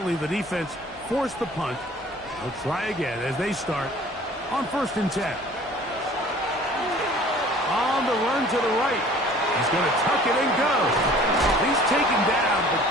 the defense forced the punt. They'll try again as they start on 1st and 10. On the run to the right. He's going to tuck it and go. He's taken down, but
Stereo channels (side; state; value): both; normal; correlation 0.50